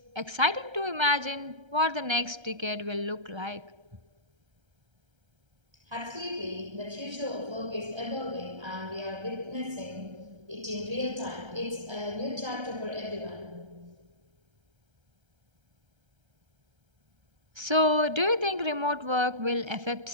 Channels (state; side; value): late; left; 1.3 ms